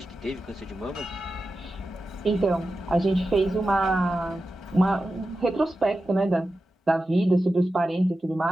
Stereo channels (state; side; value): normal; both; correlation 0.92